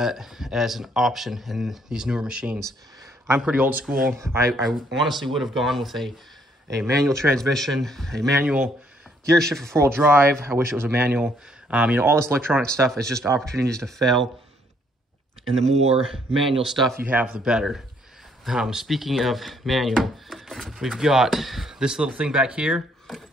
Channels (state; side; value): normal; both; correlation 0.68